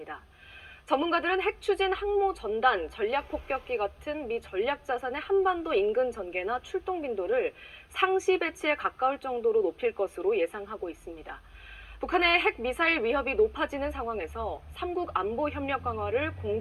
전문가들은 핵 추진 항모 전단, 전략 폭격기 같은 미 전략 자산의 한반도 인근 전개나 출동 빈도를 상시 배치에 가까울 정도로 높일 것으로 예상하고 있습니다. 북한의 핵 미사일 위협이 높아지는 상황에서 3국 안보 협력 강화를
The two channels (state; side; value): identical; both; correlation 1.00